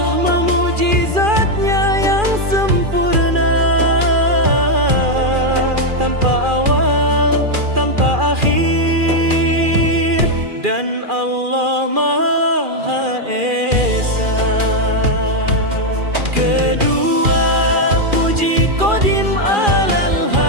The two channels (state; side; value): late; left; 2.4 ms